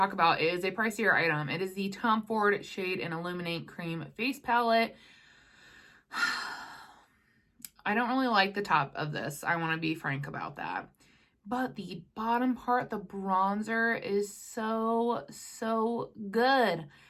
about is a pricier item. It is the Tom Ford Shade and Illuminate Cream Face Palette. I don't really like the top of this. I want to be frank about that. But the bottom part, the bronzer, is so good.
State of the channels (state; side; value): identical; both; correlation 1.00